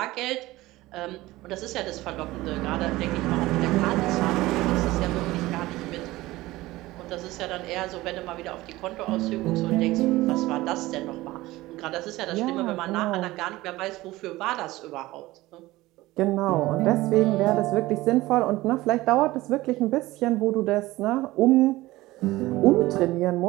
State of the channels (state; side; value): quieter; left; 18.4 dB